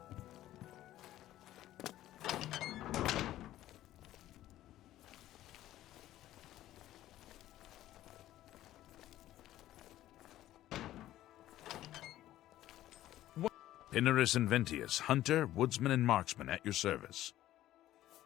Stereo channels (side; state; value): right; quieter; 14.0 dB